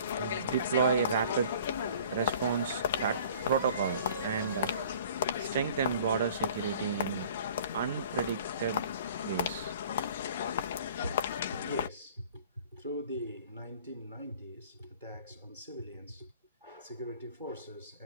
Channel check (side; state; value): both; inverted; correlation -0.49